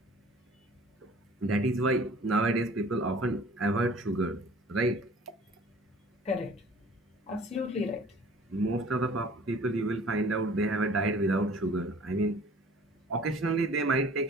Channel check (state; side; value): normal; both; correlation 0.50